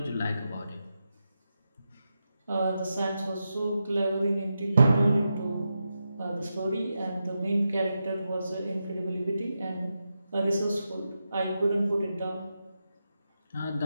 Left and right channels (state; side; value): inverted; both; correlation -0.88